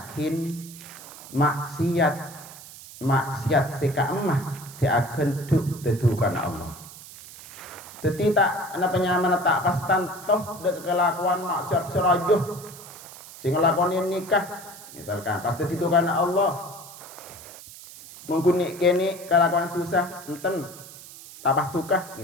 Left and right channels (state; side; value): noise; right; hiss, 16 dB below the sound